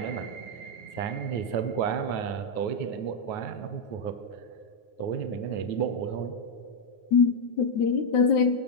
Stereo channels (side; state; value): right; late; 9.5 ms